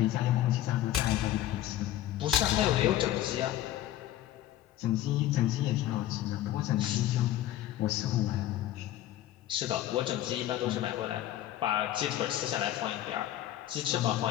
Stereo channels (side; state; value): right; quieter; 13.3 dB